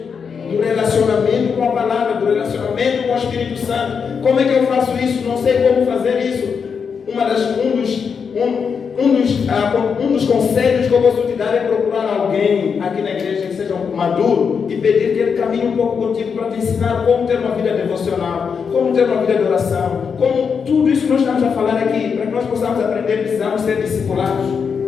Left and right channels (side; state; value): right; quieter; 6.2 dB